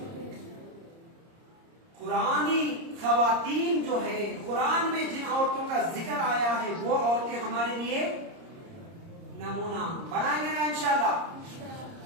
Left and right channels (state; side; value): late; left; 30 ms